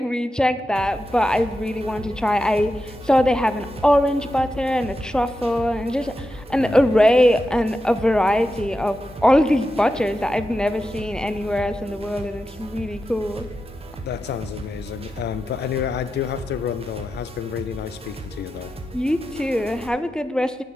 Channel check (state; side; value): normal; both; correlation 0.89